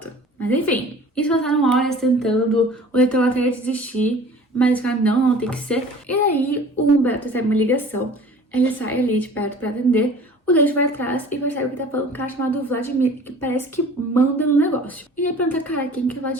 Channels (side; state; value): both; normal; correlation 0.46